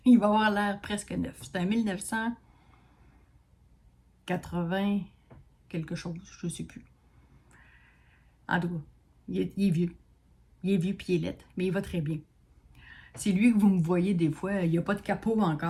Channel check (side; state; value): both; identical; correlation 1.00